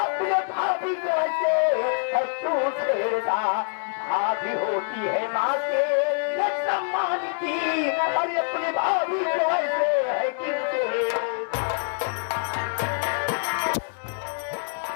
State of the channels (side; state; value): right; silent; 61 dB below the other